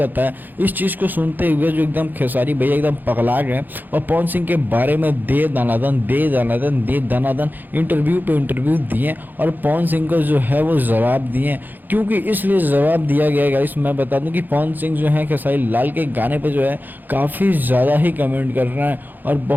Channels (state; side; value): late; left; 0.087 ms